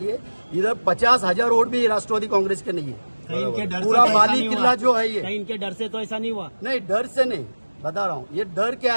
है इधर 50,000 वोट भी राष्ट्रवादी कांग्रेस के नहीं है। पूरा माली किला जो है ये, इनके डर से तो ऐसा नहीं हुआ। नहीं, डर से नहीं, बता रहा हूँ। ये डर क्या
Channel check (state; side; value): inverted; both; correlation -1.00